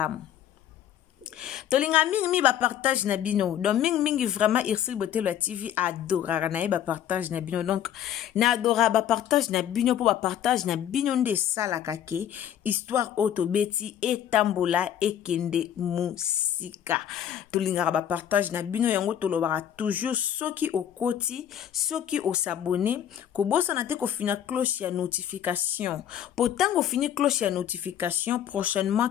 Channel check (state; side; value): quieter; right; 10.2 dB